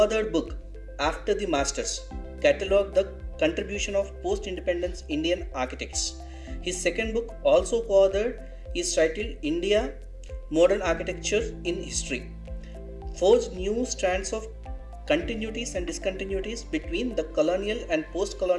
book, After the Masters, catalogued the contribution of post-independence Indian architects. His second book, also co-authored, is titled India, Modern Architecture in History, forged new strands of continuities and discontinuities between the colonial and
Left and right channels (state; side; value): identical; both; correlation 1.00